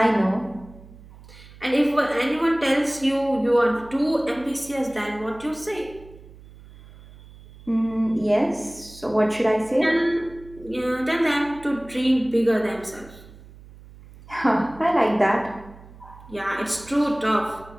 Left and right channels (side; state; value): right; noise; hum, 20 dB below the sound